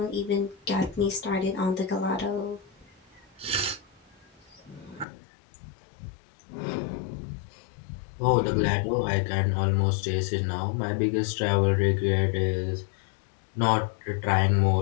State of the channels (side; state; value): right; drops out; at 5.1 s